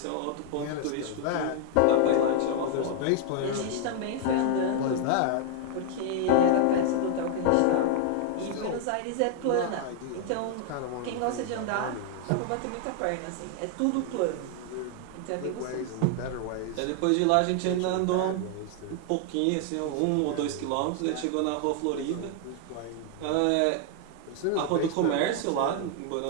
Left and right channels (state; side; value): different; both; correlation 0.00